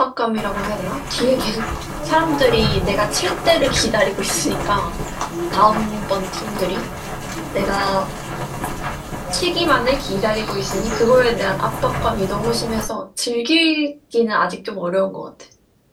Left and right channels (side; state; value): both; identical; correlation 1.00